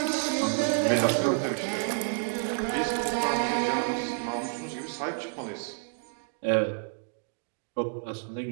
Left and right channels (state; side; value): silent; left; 58 dB below the other